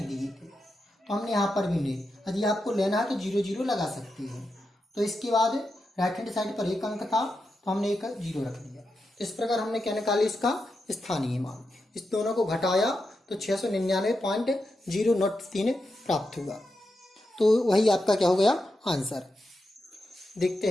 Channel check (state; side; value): normal; both; correlation 0.87